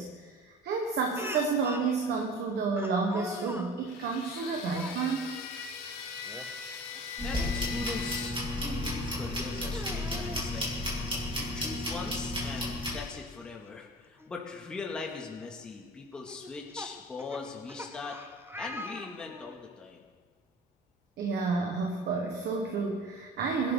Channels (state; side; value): normal; both; correlation 0.39